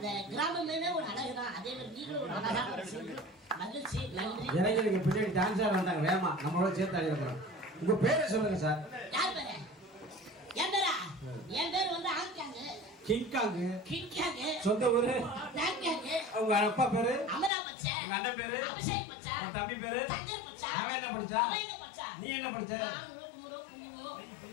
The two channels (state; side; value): drops out; right; at 17.5 s